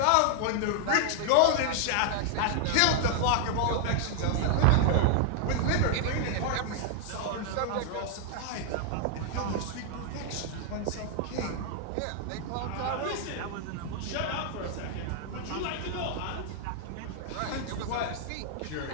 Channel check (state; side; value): different; both; correlation 0.00